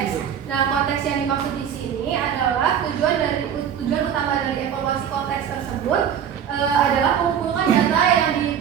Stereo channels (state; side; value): quieter; left; 8.6 dB